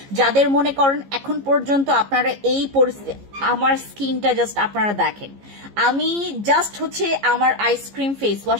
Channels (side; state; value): left; late; 15 ms